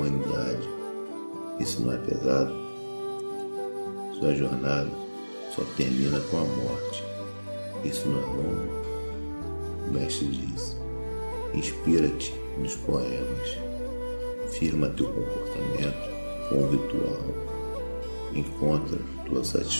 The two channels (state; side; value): inverted; both; correlation -1.00